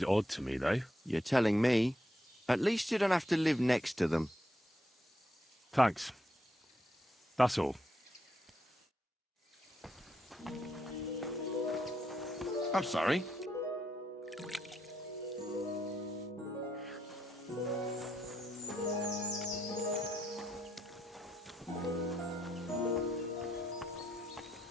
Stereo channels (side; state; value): both; normal; correlation 0.79